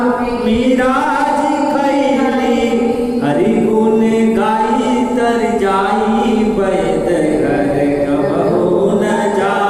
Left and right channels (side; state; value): both; identical; correlation 1.00